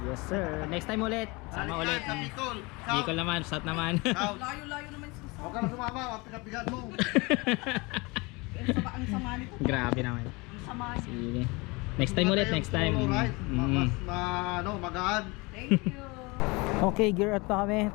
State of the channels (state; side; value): quieter; right; 25.9 dB